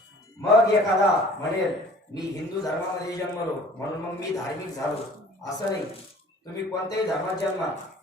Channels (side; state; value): both; normal; correlation 0.49